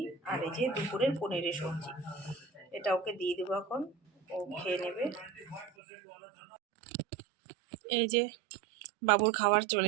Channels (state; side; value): drops out; left; at 5.7 s